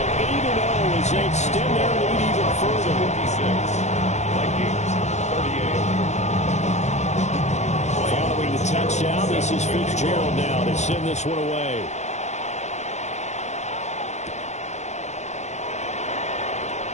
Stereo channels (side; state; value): right; late; 0.33 ms